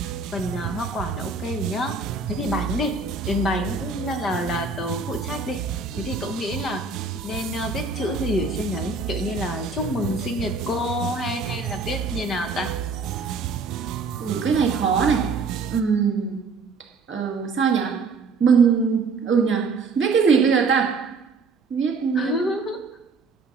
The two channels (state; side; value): quieter; left; 4.2 dB